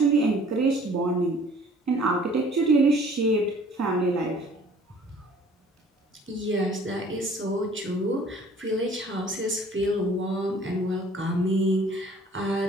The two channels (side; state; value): both; normal; correlation 0.53